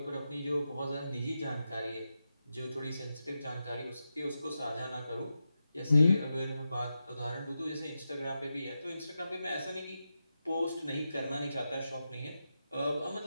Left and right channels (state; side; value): inverted; both; correlation -0.90